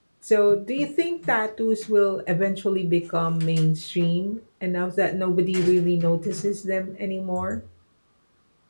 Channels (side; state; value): both; inverted; correlation -1.00